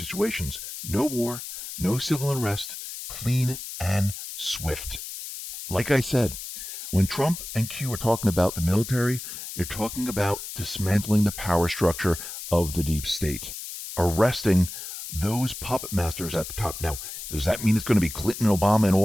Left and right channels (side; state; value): left; noise; hiss, 9 dB below the sound